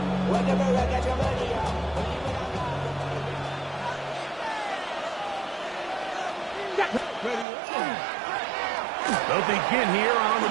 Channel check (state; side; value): drops out; left; at 7.5 s